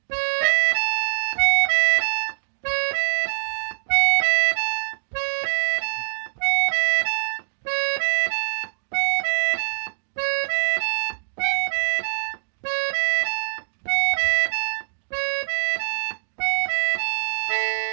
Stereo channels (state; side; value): silent; left; digital silence